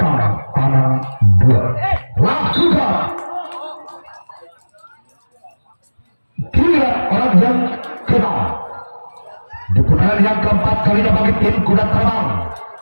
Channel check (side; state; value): both; inverted; correlation -1.00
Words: tangan 2. Lakukan giliran orang yang keenam di putaran yang keempat kalinya bagi tim kuda terbang.